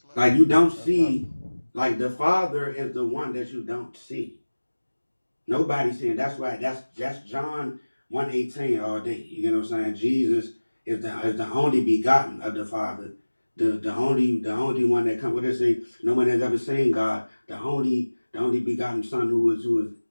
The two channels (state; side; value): inverted; both; correlation -1.00